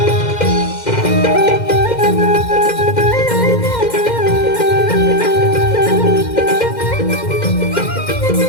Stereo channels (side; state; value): right; late; 2.1 ms